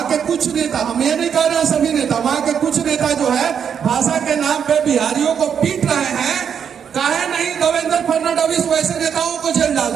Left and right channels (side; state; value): left; quieter; 7.7 dB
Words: के कुछ नेता, हम ये नहीं कह रहे हैं सभी नेता, वहां के कुछ नेता जो है भाषा के नाम पे बिहारियों को पीट रहे हैं। काहे नहीं देवेंद्र फडणवीस वैसे नेताओं को जेल डाल